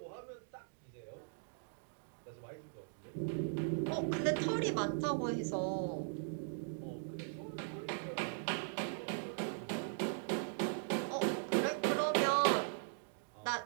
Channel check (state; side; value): silent; left; digital silence